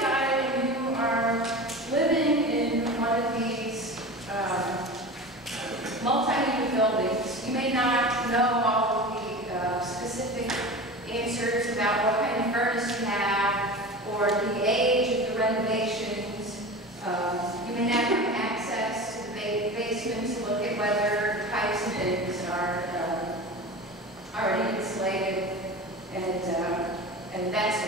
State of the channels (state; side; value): normal; both; correlation 0.31